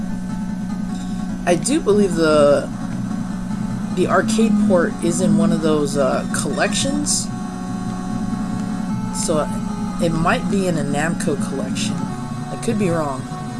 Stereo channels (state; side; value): identical; both; correlation 1.00